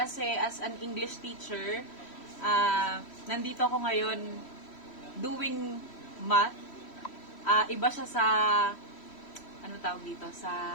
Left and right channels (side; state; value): right; late; 3.1 ms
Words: as an English teacher, nandito ako ngayon doing math. Iba siya sa, ano tawag dito, sa